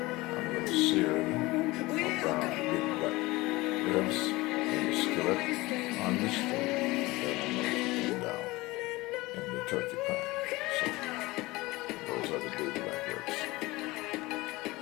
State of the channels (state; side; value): quieter; right; 20.9 dB